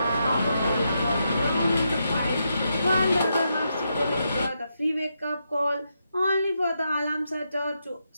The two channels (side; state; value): both; inverted; correlation -0.83